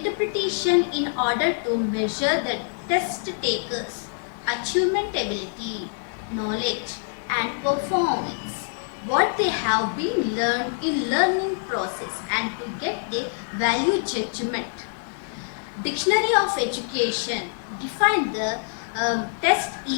in order to measure the test taker's achievement ability, knowledge and performance, what they have been learned in learning process, and to get a value judgment. Dictionary of Education define the test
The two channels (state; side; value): silent; right; digital silence